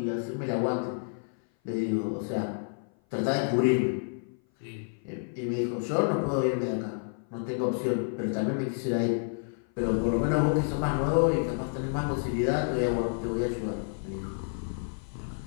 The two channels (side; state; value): right; silent; 56 dB below the other